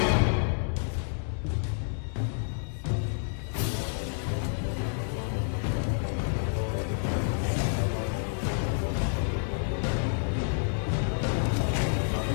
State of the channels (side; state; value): right; silent; digital silence